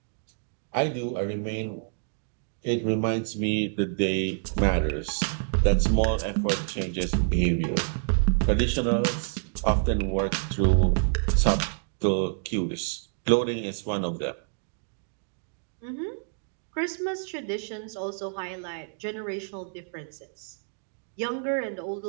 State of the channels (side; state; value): left; silent; digital silence